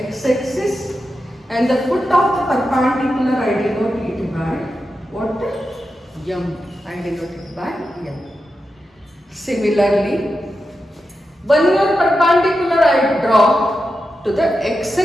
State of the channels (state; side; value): normal; both; correlation 0.89